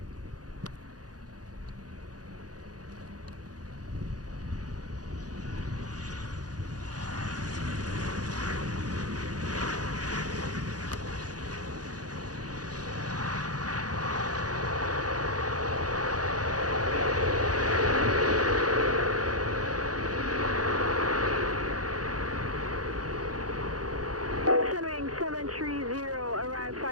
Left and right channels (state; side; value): late; left; 0.68 ms